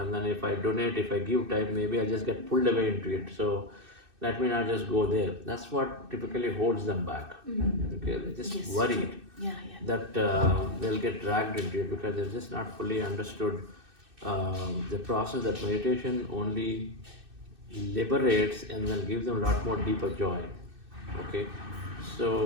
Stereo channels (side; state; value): left; late; 2.6 ms